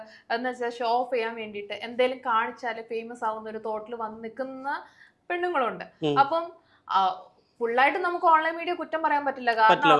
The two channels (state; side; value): identical; both; correlation 1.00